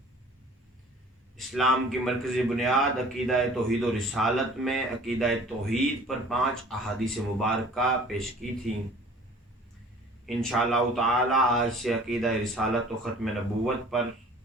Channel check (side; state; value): both; normal; correlation 0.49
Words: اسلام کی مرکزی بنیاد عقیدہ توحید و رسالت میں عقیدہ توحید پر 5 احادیث مبارکہ پیش کی تھیں۔ انشاءاللہ تعالی آج سے عقیدہ رسالت و ختم نبوت پر